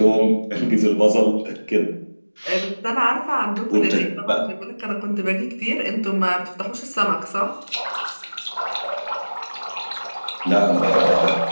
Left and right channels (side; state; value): both; inverted; correlation -1.00